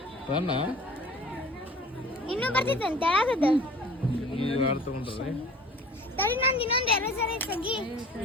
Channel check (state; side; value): normal; both; correlation 0.46